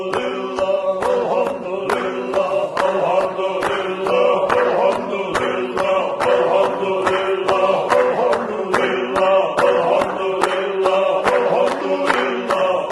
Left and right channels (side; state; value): both; identical; correlation 1.00